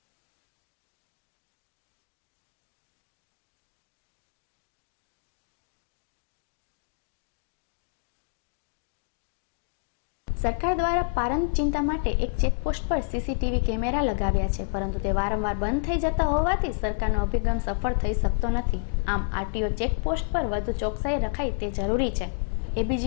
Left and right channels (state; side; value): silent; right; digital silence